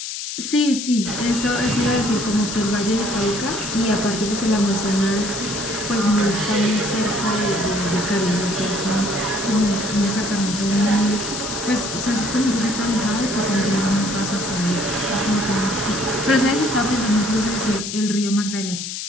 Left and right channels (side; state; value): left; noise; hiss, 6 dB below the sound